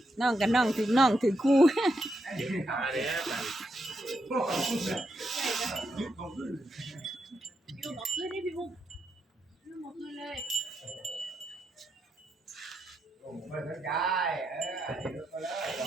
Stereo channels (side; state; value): both; normal; correlation 0.82